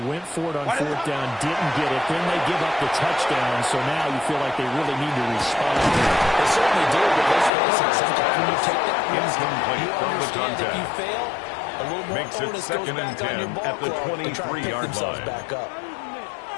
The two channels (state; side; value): drops out; right; at 7.5 s